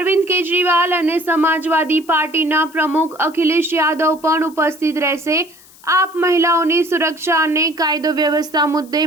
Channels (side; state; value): left; noise; hiss, 25 dB below the sound